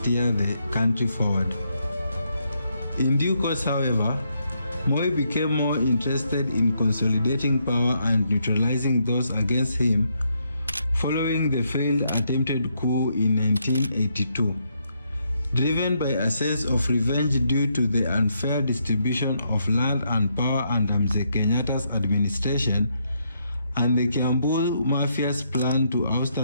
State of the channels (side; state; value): both; inverted; correlation -0.77